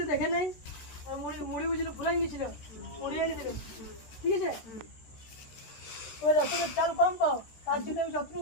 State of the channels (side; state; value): right; late; 13 ms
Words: দেখে নাই, আর মুড়ি মুড়ি বুঝলো ফুরাই গেছিল, মুড়ি এনে দিল, ঠিক আছে? ওই রাশনের চাল কম পাও, তার জন্য আমি